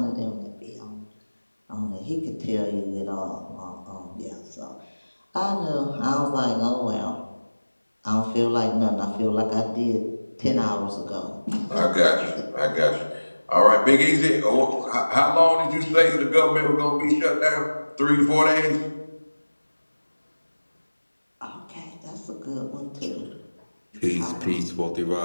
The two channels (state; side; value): inverted; both; correlation -1.00